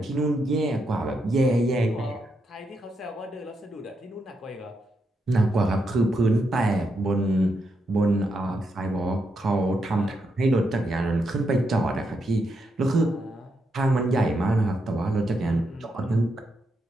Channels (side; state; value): both; normal; correlation 0.82